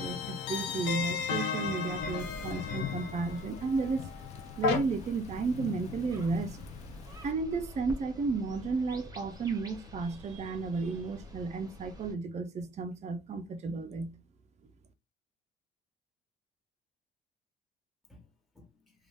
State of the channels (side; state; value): both; normal; correlation 0.52